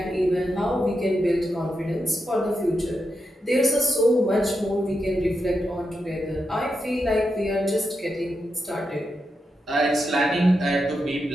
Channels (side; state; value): both; normal; correlation 0.86